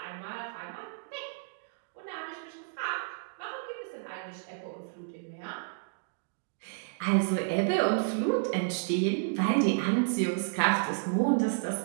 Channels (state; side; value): silent; left; digital silence